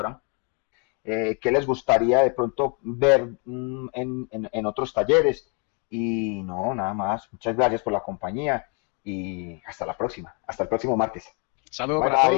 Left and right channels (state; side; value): quieter; right; 36.4 dB